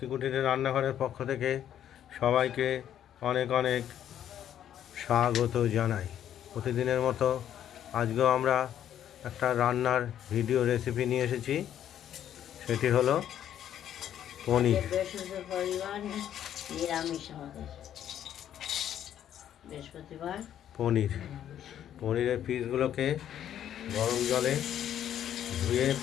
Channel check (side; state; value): right; quieter; 10.5 dB